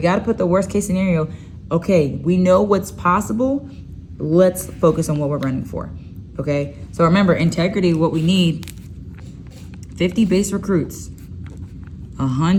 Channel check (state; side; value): identical; both; correlation 1.00